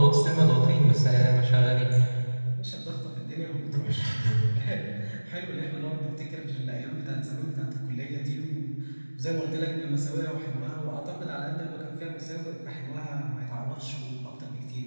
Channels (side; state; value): both; inverted; correlation -1.00